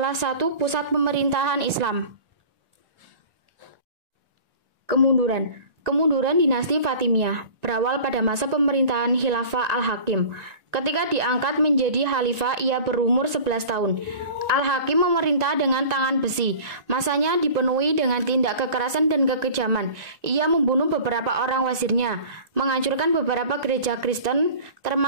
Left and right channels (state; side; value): late; left; 1.9 ms